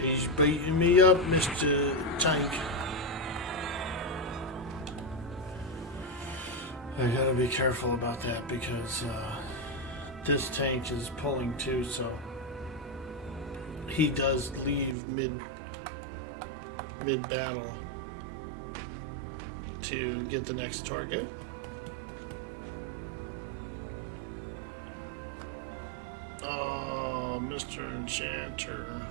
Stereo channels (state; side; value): drops out; left; at 15.0 s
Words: He's beating me up, Mr. Tank. I gotta be careful about that because this tank is pulling too, so he does leave mid battle to get the next target. Oh, Mr. Enchanter.